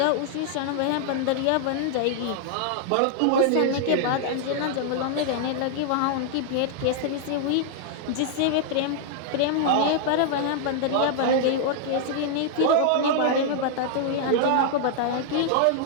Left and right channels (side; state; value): both; different; correlation -0.01